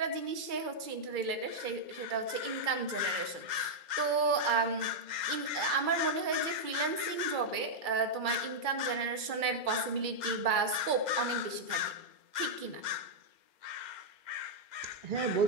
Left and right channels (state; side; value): late; left; 2.3 ms